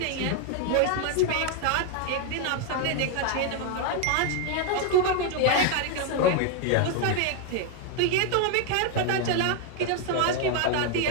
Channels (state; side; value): different; both; correlation 0.01